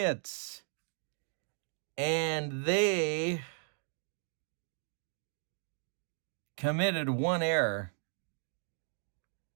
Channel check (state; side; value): silent; left; 54 dB below the other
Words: and they committed 1 error.